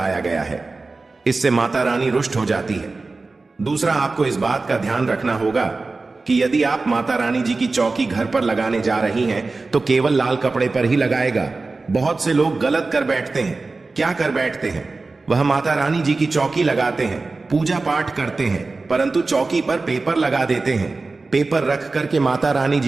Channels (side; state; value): left; quieter; 3.7 dB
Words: गया है, इससे माता रानी रुष्ट हो जाती है। दूसरा, आपको इस बात का ध्यान रखना होगा कि यदि आप माता रानी जी की चौकी घर पर लगाने जा रही हैं तो केवल लाल कपड़े पर ही लगाएगा। बहुत से लोग गलत कर बैठते हैं। क्या कर बैठते हैं? वह माता रानी जी की चौकी लगाते हैं, पूजा पाठ करते हैं, परंतु चौकी पर पेपर लगा देते हैं, पेपर रख करके माता रानी